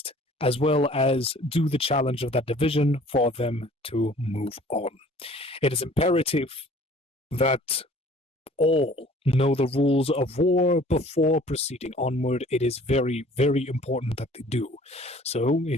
as well as do the challenge of that division for them to move on. It is imperative that all know the rules of war before proceeding onward. It is very, very important that they do. So,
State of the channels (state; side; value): normal; both; correlation 0.51